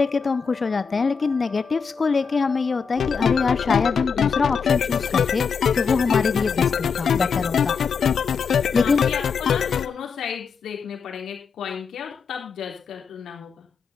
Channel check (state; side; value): quieter; right; 5.8 dB